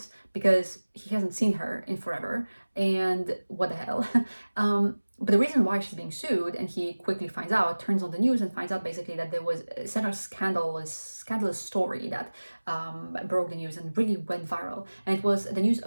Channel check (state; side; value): inverted; both; correlation -1.00